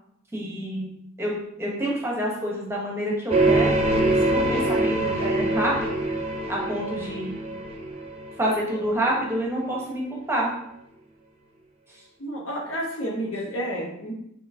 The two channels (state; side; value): normal; both; correlation 0.47